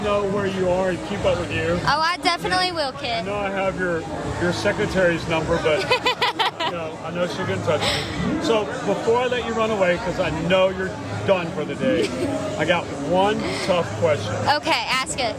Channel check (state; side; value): identical; both; correlation 1.00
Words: know where you are and keep up with you. Oh, I definitely will, I kid. know I have your secretary's number, but I know she'll get in touch with me. So before I let you run away, because I know you're done for the day, I got one tough question. Okay, ask it.